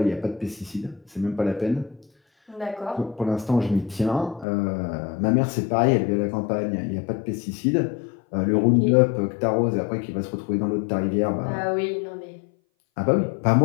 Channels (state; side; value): drops out; right; at 4.5 s